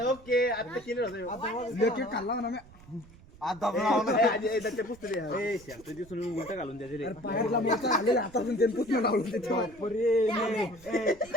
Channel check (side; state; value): right; noise; rumble, 22 dB below the sound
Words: ओके आता केलं खाल्ला ना आता दिसून उलट घालून द्यायचे हातातून ते पुसणं लावून